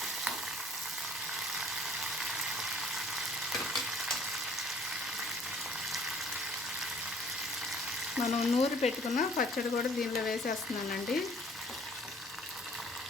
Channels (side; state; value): both; normal; correlation 0.55